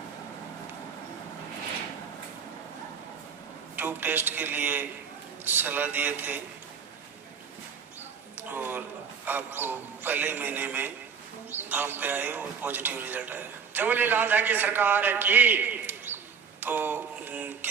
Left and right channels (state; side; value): quieter; left; 6.3 dB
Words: ट्यूब टेस्ट के लिए सलाह दिए थे और आपको पहले महीने में धाम पे आए और पॉजिटिव रिजल्ट आया। जबली लाल की सरकार की। तो